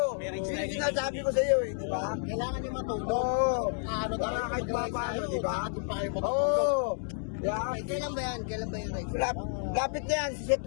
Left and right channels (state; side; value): silent; right; digital silence